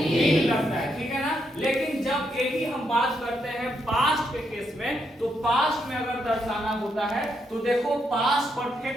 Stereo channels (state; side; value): normal; both; correlation 0.79